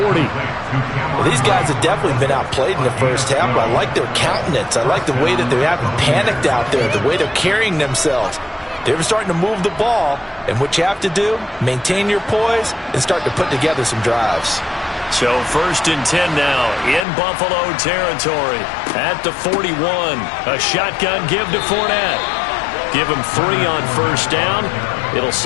Well, these guys have definitely been outplayed in the first half, but I like their countenance. I like the way that they haven't panicked out there, the way they're carrying themselves. They're starting to move the ball, and what you have to do, maintain your poise and start to put together some drives. So 1st and 10 now in Buffalo territory at the 41. A shotgun give to Fournette. Give him 3 on first down. It'll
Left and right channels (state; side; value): drops out; right; at 17.1 s